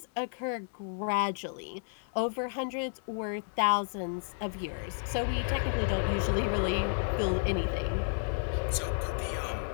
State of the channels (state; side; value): silent; right; 57 dB below the other